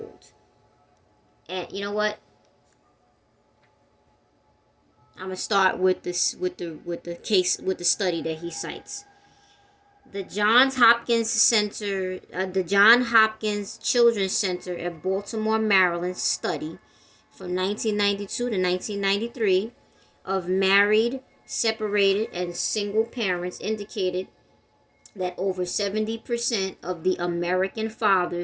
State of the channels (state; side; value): identical; both; correlation 1.00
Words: And you know what? I'm gonna start with this with the study that he cites. The Johns Hopkins Center, the John Hopkins Children's Center at Baltimore, Maryland study from 1992 to 1993 of married, separated, and single parents indicated that over 70% of the American